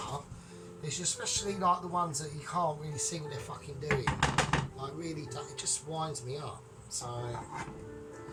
It's especially like the ones that you can't really see what they're fucking doing. Like really, it just winds me up. So,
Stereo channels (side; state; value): both; identical; correlation 1.00